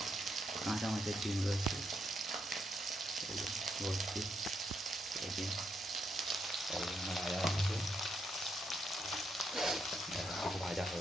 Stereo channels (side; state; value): both; normal; correlation 0.79